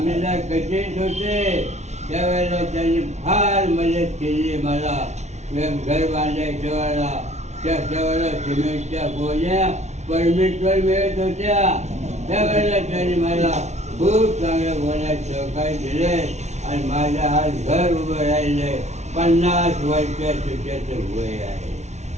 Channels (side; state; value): left; late; 0.32 ms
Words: कचेत होते त्यावेळेला त्यांनी फार मदत केली मला. घर बांधायच्या वेळेला त्यावेळेला सिमेंटच्या गोण्या परमिटवर मिळत होत्या. त्यावेळेला त्यांनी मला खूप चांगल्या गोण्यात सहकार्य दिले आणि माझ्या आज घर उभं राहिले. 50 वर्षाचं त्याचं वय आहे.